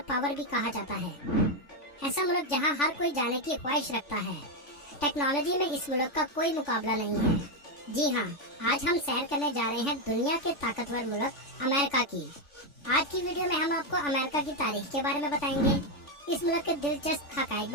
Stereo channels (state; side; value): late; right; 3.5 ms